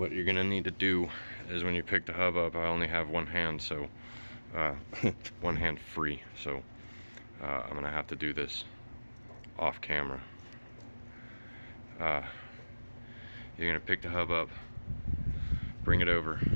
you're gonna need to do is, when you pick the hub up, I only have one hand, so one hand free, so I'm gonna have to do this off camera. You're gonna pick the hub up, bring it over,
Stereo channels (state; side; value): inverted; both; correlation -1.00